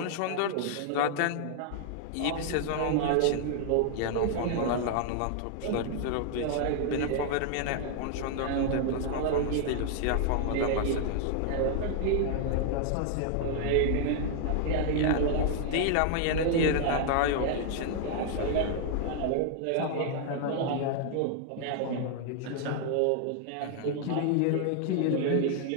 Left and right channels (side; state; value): both; different; correlation 0.00